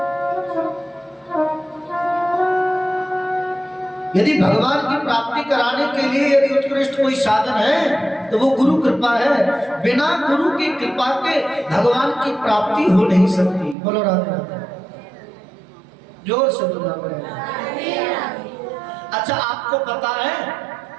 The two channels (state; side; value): drops out; left; at 13.8 s